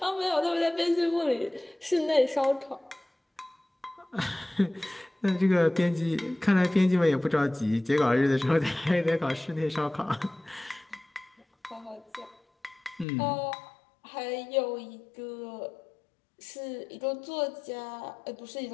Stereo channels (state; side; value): drops out; right; at 13.1 s